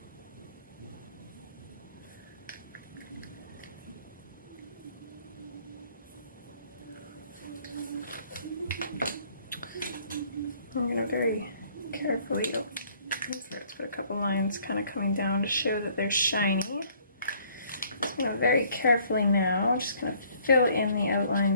I'm going to very carefully, let's put a couple lines kind of coming down to show that they're shiny. I'm going to very carefully now, just going to fill in the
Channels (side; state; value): both; inverted; correlation -0.61